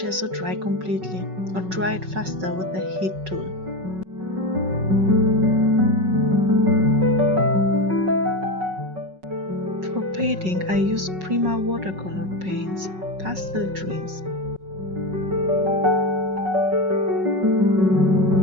dry completely or dry it faster with the heat tool. For painting I use Prima watercolor paints, Pastel Dreams.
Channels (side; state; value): left; late; 5.4 ms